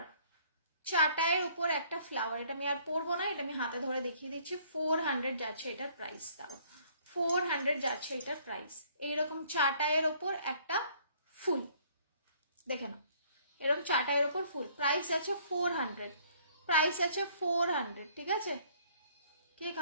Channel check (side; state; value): both; inverted; correlation -0.60